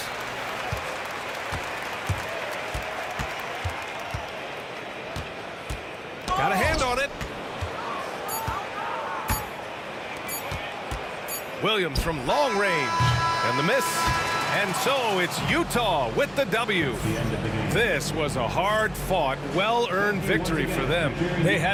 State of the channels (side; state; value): both; identical; correlation 1.00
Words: Got a hand on it. Williams from long range. And the miss. And so it's Utah with the W. This was a hard-fought, well-earned victory for them. They